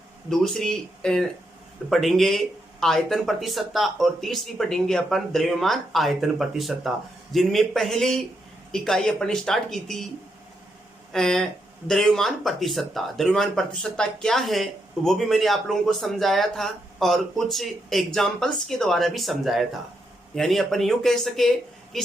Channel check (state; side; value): normal; both; correlation 0.80